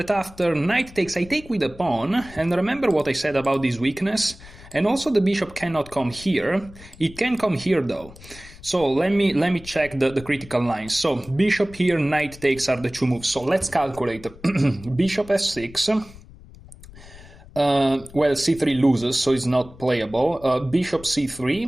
after knight takes, I take with a pawn, and remember what I said about this weakness? And also the bishop cannot come here. It can come here though. So let me check the critical lines. So bishop here, knight takes are the two moves. So let's calculate. Bishop f6. Well, c3 loses, so it's not playable. Bishop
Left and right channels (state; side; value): noise; left; rumble, 19 dB below the sound